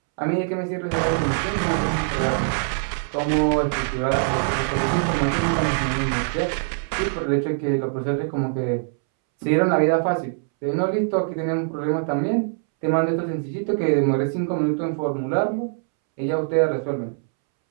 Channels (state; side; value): silent; left; 63 dB below the other